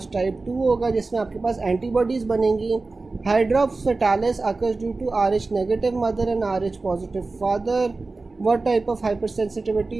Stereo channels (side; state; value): left; quieter; 3.6 dB